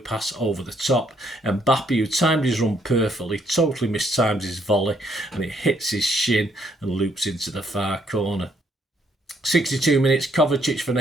over the top. And Mbappe, who timed his run perfectly, totally mistimed his volley, and it hits his shin and loops into the far corner. 62 minutes, Kovacic for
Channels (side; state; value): both; normal; correlation 0.70